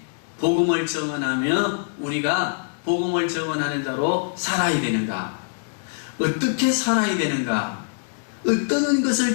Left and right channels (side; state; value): right; silent; digital silence